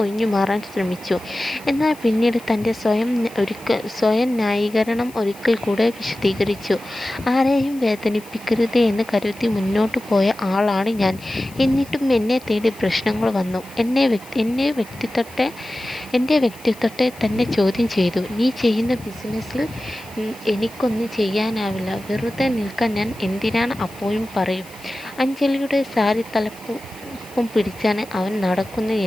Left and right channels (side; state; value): left; noise; hiss, 22 dB below the sound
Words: ഒഴിഞ്ഞു മാറാൻ ശ്രമിച്ചു. എന്നാൽ പിന്നീട് തൻ്റെ സ്വയം ന്യായീകരണം ഒരിക്കൽ കൂടെ വിശദീകരിച്ചു. ആരെയും വേദനിപ്പിക്കരുത് എന്ന് കരുതി മുന്നോട്ട് പോയ ആളാണ് ഞാൻ. എന്നിട്ടും എന്നെ തേടി പ്രശ്നങ്ങൾ വന്നു. എൻ്റെ വ്യക്തിത്വത്തെ തന്നെ ചോദ്യം ചെയ്തു. നീ ചെയ്യുന്ന ബിസിനസ്സിൽ എനിക്കൊന്നും ചെയ്യാനാവില്ല, വെറുതെ നിൽക്കാൻ ഞാൻ എന്തിനാണ് അപ്പോഴും പറയും. അഞ്ജലിയുടെ സാരി തലപ്പും പിടിച്ചാണ് അവൻ നടക്കുന്നത്